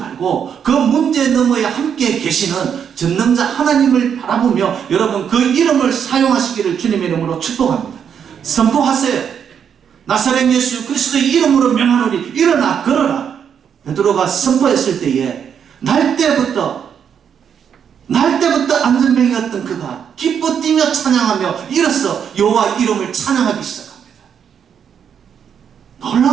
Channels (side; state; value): left; quieter; 7.9 dB